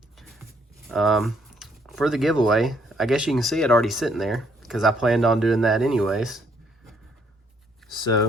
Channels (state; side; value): normal; both; correlation 0.68